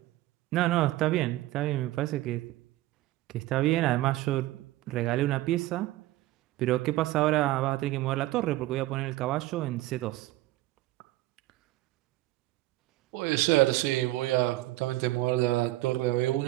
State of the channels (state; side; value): quieter; left; 17.0 dB